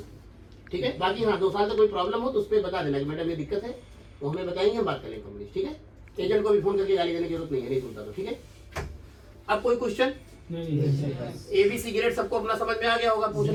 ठीक है, बाकी हाँ 2 साल तक कोई प्रॉब्लम हो तो उस पर बता देना कि मैडम ये दिक्कत है, वो हमें बताएंगे, हम बात करेंगे कंपनी। ठीक है, एजेंट को भी फोन करके गाली देने की जरूरत नहीं है, नहीं सुनता तो। ठीक है, अब कोई क्वेश्चन? नहीं, नहीं, सही बात। ABC ग्रेड सबको अपना समझ में आ गया होगा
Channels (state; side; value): identical; both; correlation 1.00